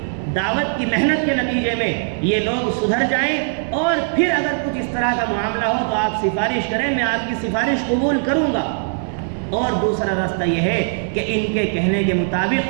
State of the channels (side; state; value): left; silent; digital silence